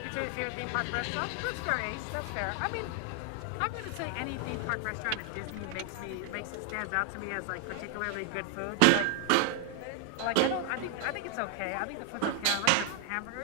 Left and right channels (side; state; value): both; different; correlation 0.00